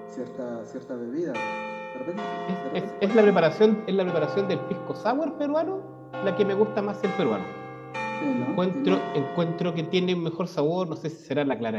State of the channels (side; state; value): both; identical; correlation 1.00